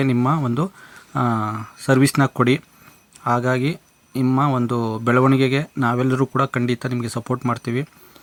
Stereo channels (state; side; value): identical; both; correlation 1.00